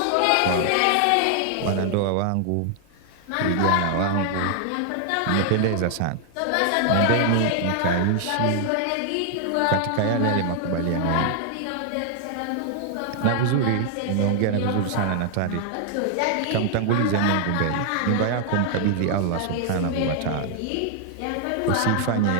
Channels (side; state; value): both; different; correlation 0.00